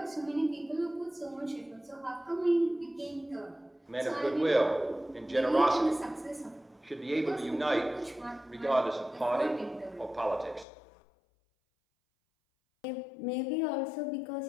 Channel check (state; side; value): drops out; right; at 10.7 s